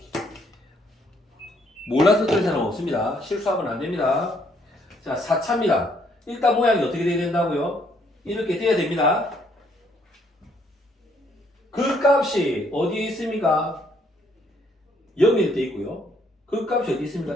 몰라서 그런 사람 없습니다. 실수하면 안 됩니다. 자 4차입니다. 일단 모양이 어떻게 돼야 된다고요? 이렇게 돼야 됩니다. 그 값이 어디에 있습니까? 0일 때 있고요. 그 값이 어디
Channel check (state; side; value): normal; both; correlation 0.68